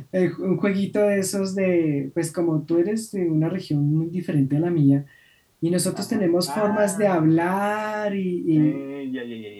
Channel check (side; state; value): both; identical; correlation 1.00